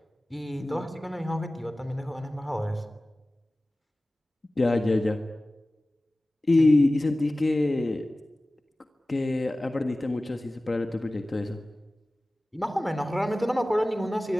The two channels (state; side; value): normal; both; correlation 0.97